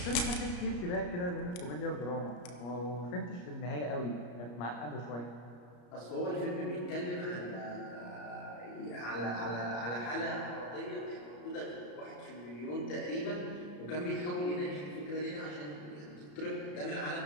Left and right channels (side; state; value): right; late; 34 ms